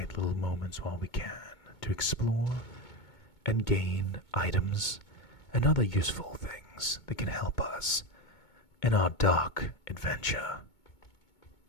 little moments while we can, to explore and gain items and other useful things that can help us in our dark adventure.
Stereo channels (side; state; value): right; late; 2.2 ms